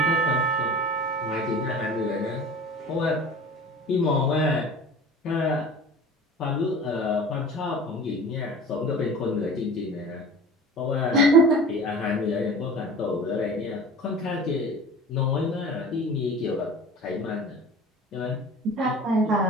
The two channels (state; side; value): normal; both; correlation 0.39